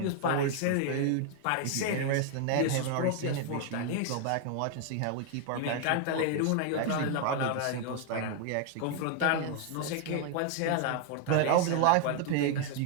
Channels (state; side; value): different; both; correlation 0.00